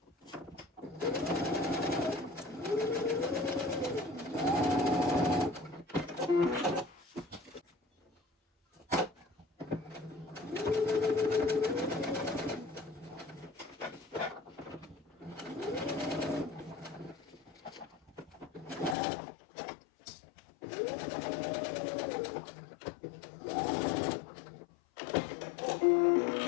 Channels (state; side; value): drops out; right; at 18.9 s